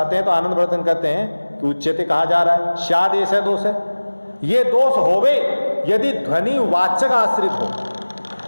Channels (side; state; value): both; inverted; correlation -1.00